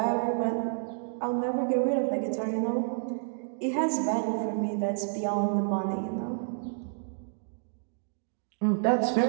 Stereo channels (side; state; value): left; silent; digital silence